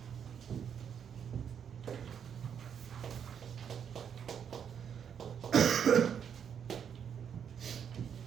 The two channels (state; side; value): quieter; left; 8.0 dB